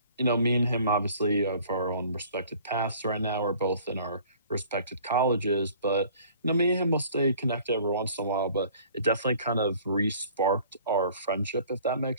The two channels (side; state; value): both; inverted; correlation -0.52